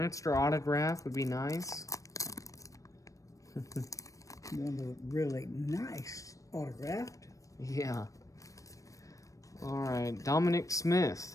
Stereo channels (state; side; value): late; right; 0.16 ms